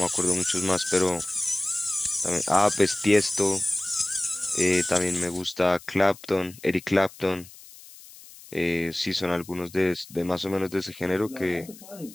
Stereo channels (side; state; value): left; noise; hiss, 20 dB below the sound